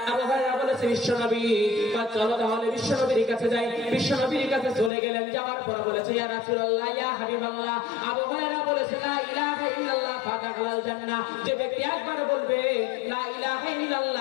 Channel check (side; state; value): right; drops out; at 4.9 s